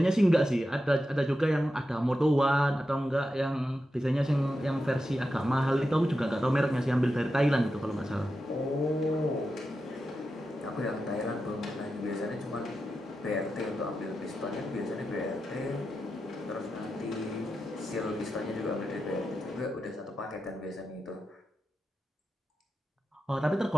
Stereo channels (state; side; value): normal; both; correlation 0.89